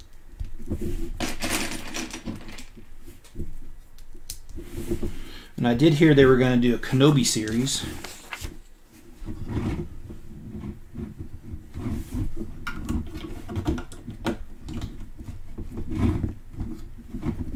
And I did hear they were going to do a Kenobi series.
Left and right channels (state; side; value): identical; both; correlation 1.00